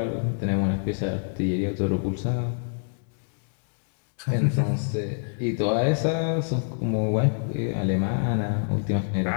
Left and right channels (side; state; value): right; silent; digital silence